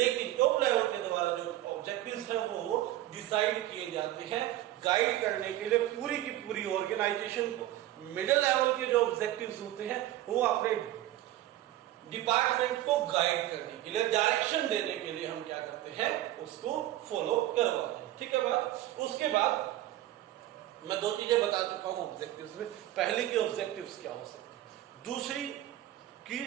टॉप लेवल के द्वारा जो ऑब्जेक्टिव्स हैं वो डिसाइड किए जाते हैं गाइड करने के लिए पूरी की पूरी ऑर्गेनाइजेशन को। मिडिल लेवल के जो ऑब्जेक्टिव्स होते हैं वो अपने डिपार्टमेंट को गाइड करने के लिए, डायरेक्शन देने के लिए हम क्या करते हैं, उसको फॉलो करवाते हैं। ठीक है बात। उसके बाद मैं दो चीजें बता चुका हूं ऑब्जेक्टिव्स में। पहले की ऑब्जेक्टिव्स क्या हो सकते हैं, दूसरी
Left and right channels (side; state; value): left; quieter; 14.3 dB